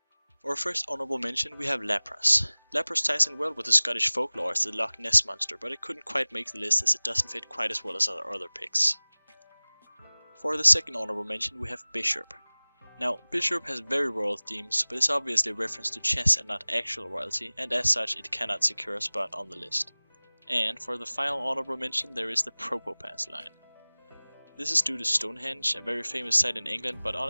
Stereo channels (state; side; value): inverted; both; correlation -1.00